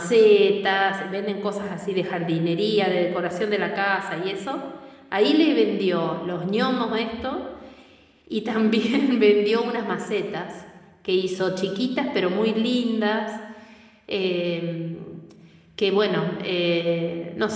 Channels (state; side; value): identical; both; correlation 1.00